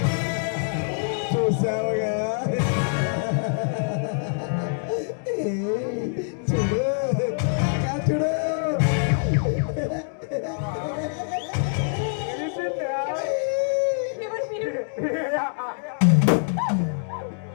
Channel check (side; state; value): right; silent; digital silence